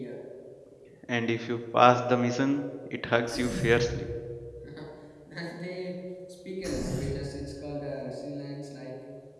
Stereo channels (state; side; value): identical; both; correlation 1.00